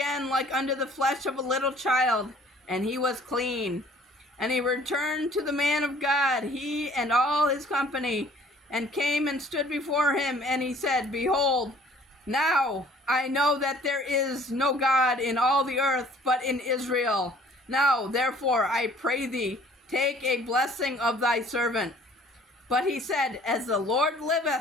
like unto the flesh of a little child, and he was clean. And he returned to the man of God, he and all his company, and came and stood before him. And he said, Behold, now I know that there is no God in all the earth but in Israel. Now therefore I pray thee, take a blessing of thy servant. But he said, As the Lord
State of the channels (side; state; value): both; normal; correlation 0.55